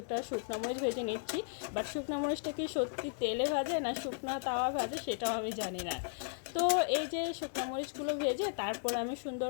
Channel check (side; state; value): right; silent; digital silence